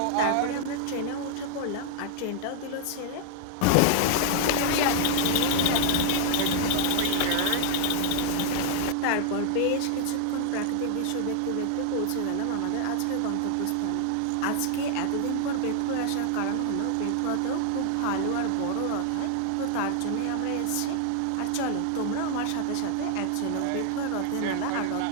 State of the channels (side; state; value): both; different; correlation 0.00